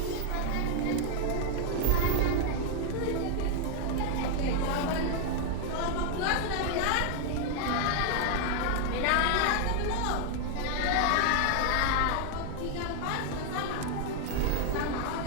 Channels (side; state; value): both; different; correlation 0.00